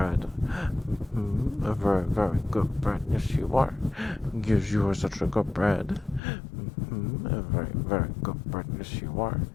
A very, very good Brett. Yes, you are. Yes, you are such a good Brett. A very, very good Brett. Yes, you are.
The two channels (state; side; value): drops out; right; at 6.2 s